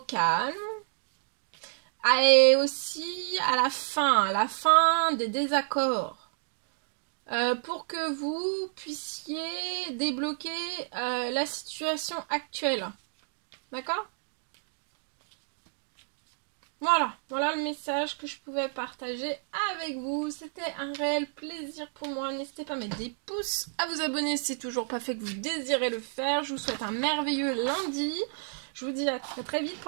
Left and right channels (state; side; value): silent; left; digital silence